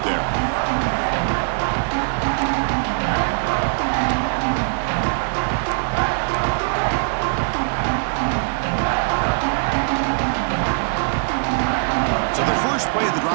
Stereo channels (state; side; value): silent; left; digital silence